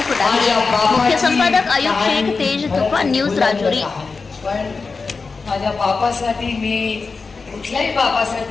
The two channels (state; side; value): quieter; right; 4.5 dB